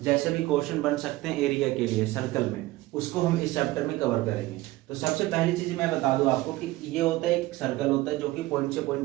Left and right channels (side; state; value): left; quieter; 18.3 dB